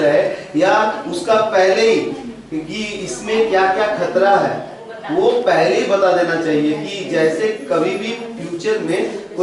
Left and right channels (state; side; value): identical; both; correlation 1.00